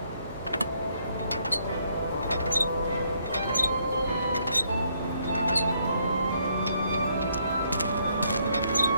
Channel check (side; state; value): both; inverted; correlation -0.71